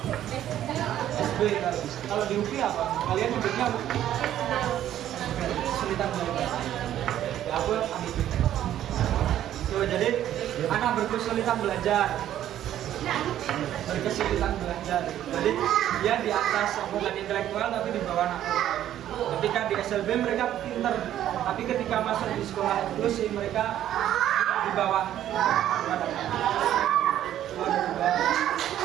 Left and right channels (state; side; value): quieter; left; 11.8 dB